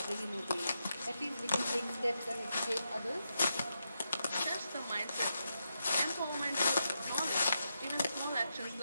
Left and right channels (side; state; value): both; inverted; correlation -0.85